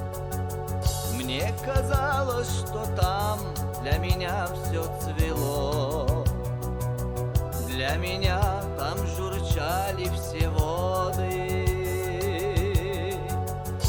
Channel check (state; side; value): identical; both; correlation 1.00